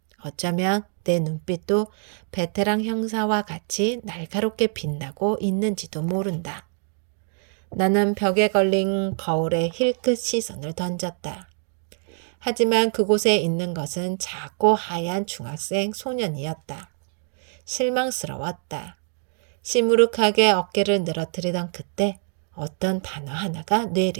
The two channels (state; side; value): silent; left; 55 dB below the other